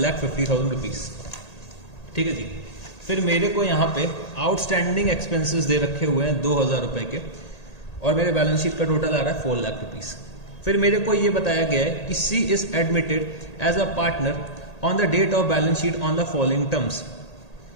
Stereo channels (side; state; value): right; late; 1.8 ms